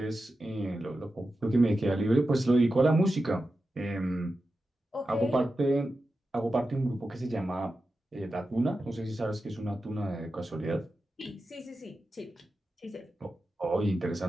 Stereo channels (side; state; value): both; normal; correlation 0.91